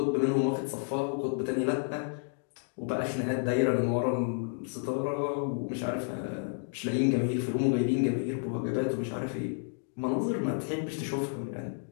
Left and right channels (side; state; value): right; silent; digital silence